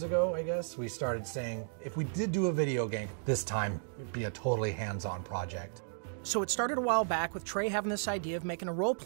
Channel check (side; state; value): left; silent; digital silence